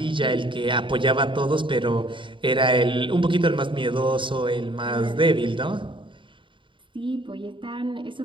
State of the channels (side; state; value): left; late; 0.24 ms